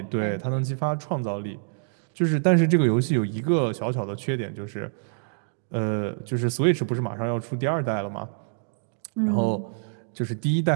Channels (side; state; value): left; silent; digital silence